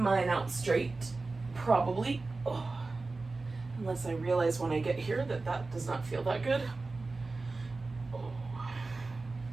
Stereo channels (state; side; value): quieter; left; 3.6 dB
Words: out straight, probably. Oh, unless I realize when I get here that that does not feel that good.